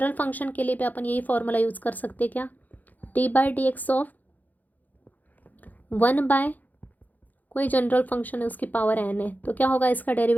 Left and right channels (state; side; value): late; right; 0.082 ms